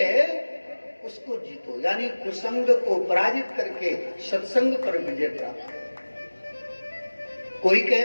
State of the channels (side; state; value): both; inverted; correlation -1.00